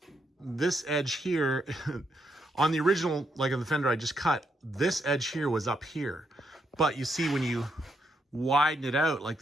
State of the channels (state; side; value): normal; both; correlation 0.79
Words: edge here on the original, like on the fender I just cut, this edge here was up here. But you see when you widen it out like